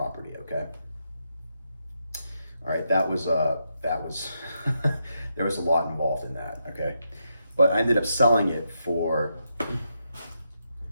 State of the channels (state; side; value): inverted; both; correlation -0.82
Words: okay? All right, that was there was a lot involved in that, okay? But I ended up selling it for,